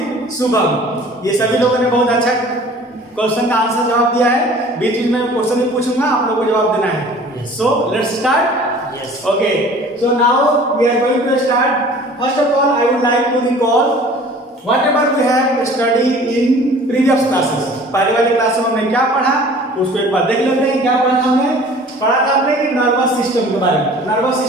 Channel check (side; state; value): both; normal; correlation 0.47